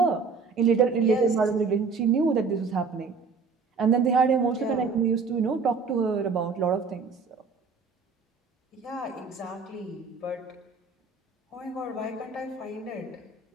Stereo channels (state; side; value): quieter; left; 4.9 dB